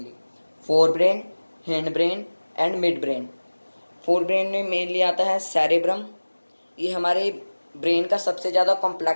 fore brain, hind brain and mid brain. Fore brain में मेनली आता है सेरेब्रम, ये हमारे ब्रेन का सबसे ज़्यादा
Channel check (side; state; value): both; inverted; correlation -1.00